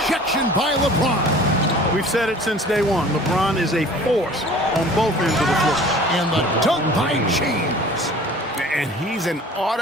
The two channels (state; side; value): normal; both; correlation 0.46